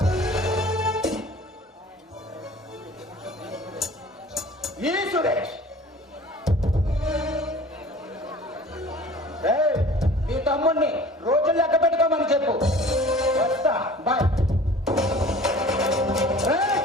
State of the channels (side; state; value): both; normal; correlation 0.45